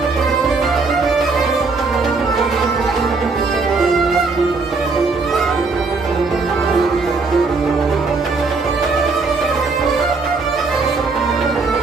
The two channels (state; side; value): quieter; left; 4.1 dB